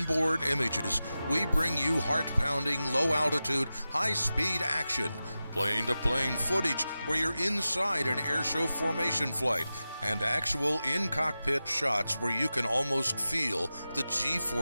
images, we bring you heart-pounding, low-altitude, high-speed action, plane-to-plane footage where you're inside an airshow formation flight, and actual in-cockpit shots where you can almost feel the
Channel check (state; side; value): inverted; both; correlation -0.94